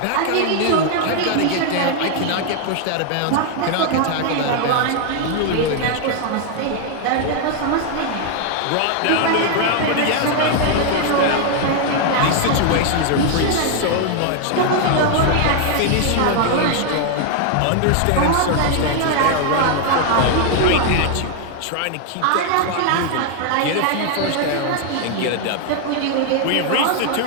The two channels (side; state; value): both; different; correlation 0.00